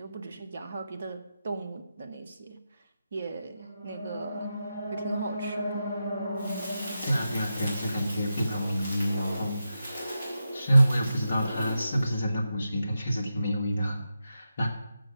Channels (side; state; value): both; inverted; correlation -0.88